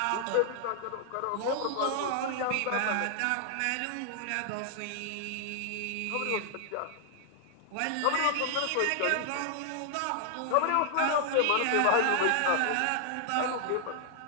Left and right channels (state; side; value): different; both; correlation 0.00